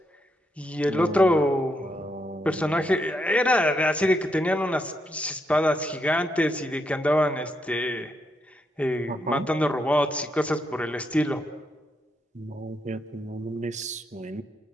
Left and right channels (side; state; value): both; normal; correlation 0.79